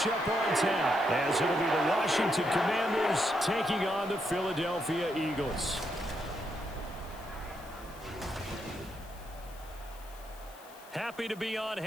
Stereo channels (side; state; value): left; noise; hiss, 22 dB below the sound